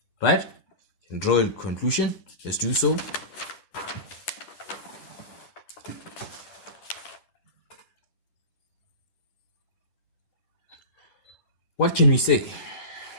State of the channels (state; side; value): late; right; 11 ms